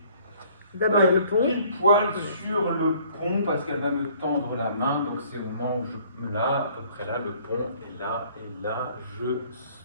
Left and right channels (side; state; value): both; inverted; correlation -0.58